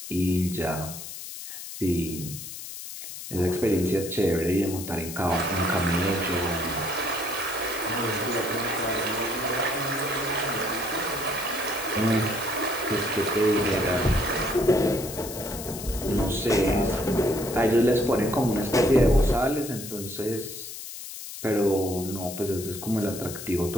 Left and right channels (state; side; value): noise; left; hiss, 10 dB below the sound